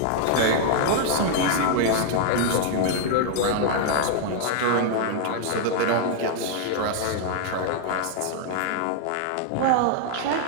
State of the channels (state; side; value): different; both; correlation -0.01